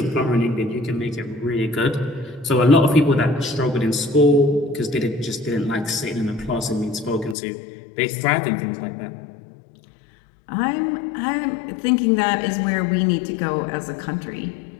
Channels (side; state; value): right; drops out; at 7.4 s